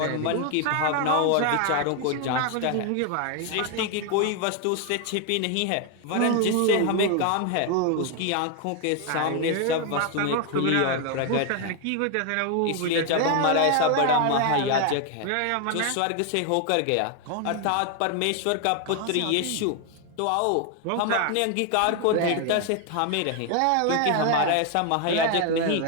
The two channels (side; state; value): both; different; correlation 0.01